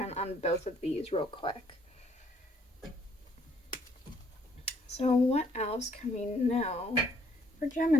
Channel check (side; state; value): both; normal; correlation 0.65